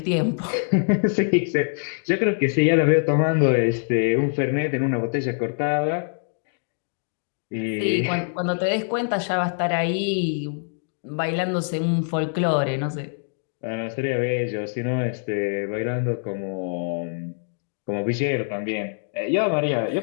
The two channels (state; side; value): silent; right; 62 dB below the other